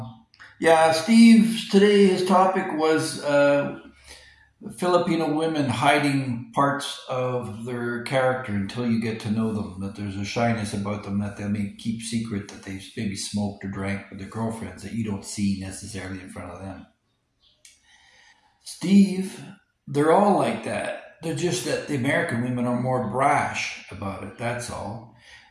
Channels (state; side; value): identical; both; correlation 1.00